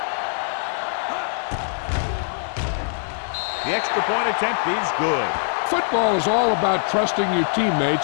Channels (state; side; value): silent; right; digital silence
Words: The extra point attempt is good. Football is all about trusting your